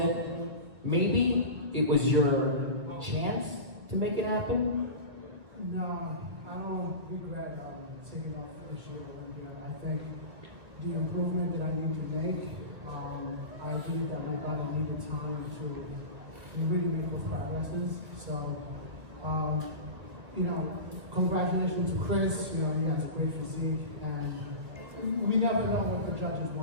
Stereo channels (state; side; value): late; left; 1.6 ms